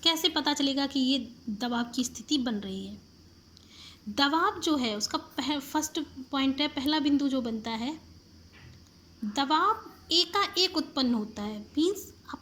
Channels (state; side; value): identical; both; correlation 1.00